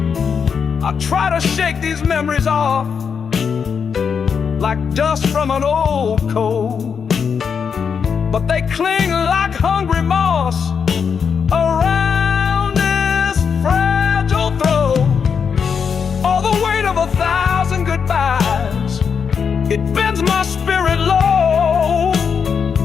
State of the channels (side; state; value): right; quieter; 6.5 dB